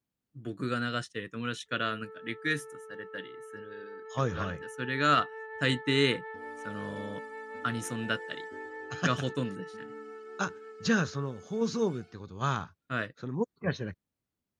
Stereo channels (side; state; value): both; identical; correlation 1.00